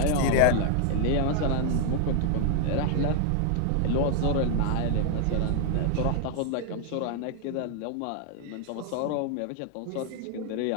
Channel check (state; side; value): different; both; correlation 0.00